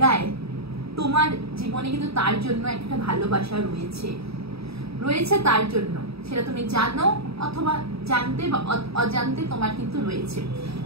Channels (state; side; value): late; left; 0.77 ms